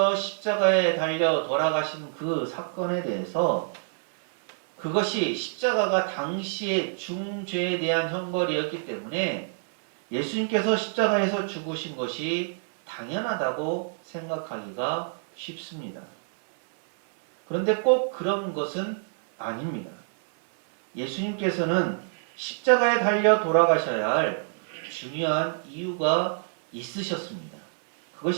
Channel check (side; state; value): left; silent; 60 dB below the other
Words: 십자가에 달려 돌아가신 그 사건에 대해서 그것이 십자가가 당시의 중죄에 대한 형벌이었기 때문에 예수님께서 십자가에서 죽으신 것이 당연하다고 생각하기가 쉽습니다. 그런데 꼭 그런 것은 아닙니다. 예수님께서는 십자가에 달려 돌아가셔야 할 중요한 이유가 있으셨습니다.